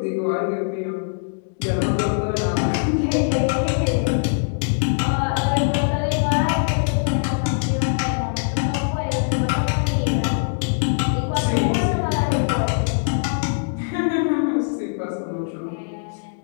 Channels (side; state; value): right; silent; digital silence